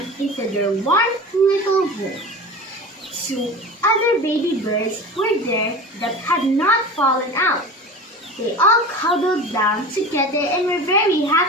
into their warm little room. Two other baby birds were there that had not fallen out. They all cuddled down together and were very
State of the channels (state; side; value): normal; both; correlation 0.33